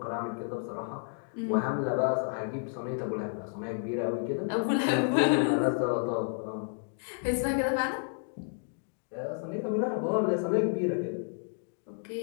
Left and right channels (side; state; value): right; silent; 57 dB below the other